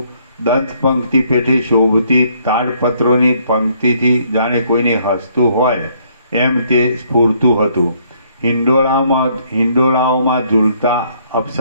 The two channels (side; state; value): both; inverted; correlation -0.67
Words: દંત પંક્તિ પેઠે શોભતી તાડપત્રોની પંક્તિથી જાણે કોઈને હસતું હોય એમ તે સ્ફૂરતું હતું. હિંડોળાઓમાં ઝૂલતા